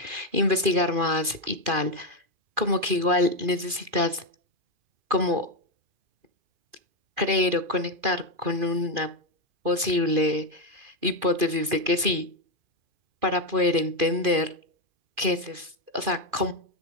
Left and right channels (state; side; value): late; left; 2.4 ms